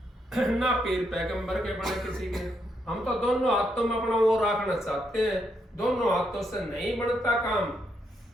ना पीर पैगंबर के बने किसी के। हम तो दोनों हाथों में अपना वो रखना चाहते हैं। दोनों हाथों से नहीं बनता काम।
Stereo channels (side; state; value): both; normal; correlation 0.78